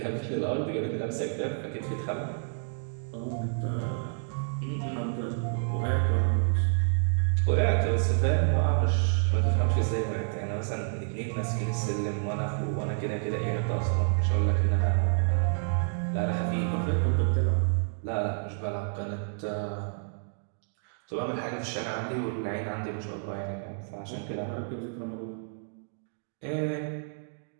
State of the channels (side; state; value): left; silent; digital silence